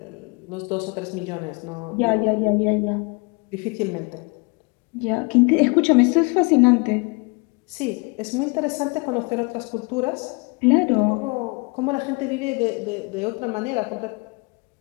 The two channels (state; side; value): quieter; right; 30.6 dB